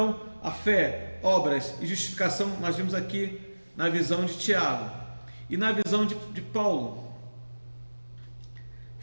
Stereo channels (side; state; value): both; inverted; correlation -1.00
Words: a fé, obras e justificação, nós vimos aqui na visão de Tiago. E na visão de Paulo.